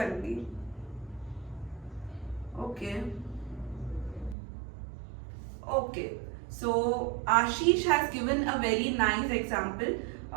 Okay, so Ashish has given a very nice example.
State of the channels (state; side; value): drops out; left; at 4.4 s